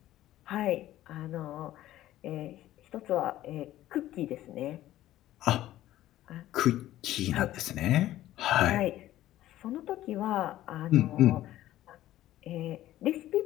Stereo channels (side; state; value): right; quieter; 14.2 dB